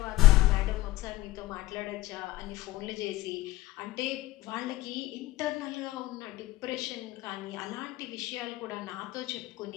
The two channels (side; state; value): right; quieter; 17.6 dB